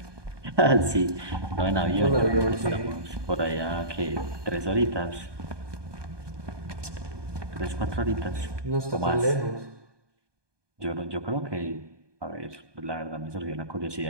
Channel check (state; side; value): late; left; 1.2 ms